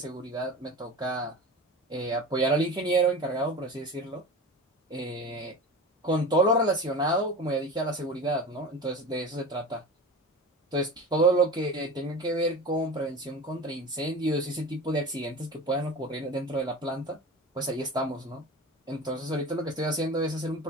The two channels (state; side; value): normal; both; correlation 0.32